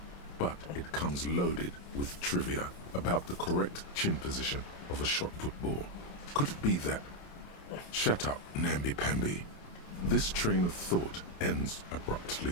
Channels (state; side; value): late; right; 28 ms